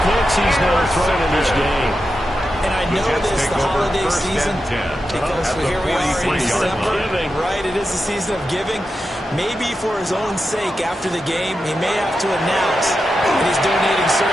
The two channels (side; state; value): both; normal; correlation 0.89